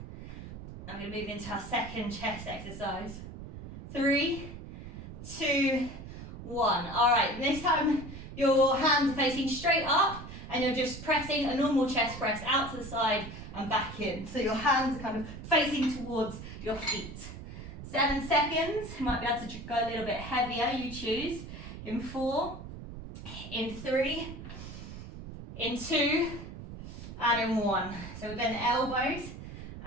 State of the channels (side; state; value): right; noise; rumble, 11 dB below the sound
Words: I'm going to move into our second chest exercise. 3, 2, 1. All right, this time your hands are facing straight up and you're just pressing a normal chest press out to the side and back in. So your hands are kind of facing towards your feet. 7 seconds. You might be able to go a little bit heavier, you choose. In 4, in 3, in 2, and in 1. So we bend the elbows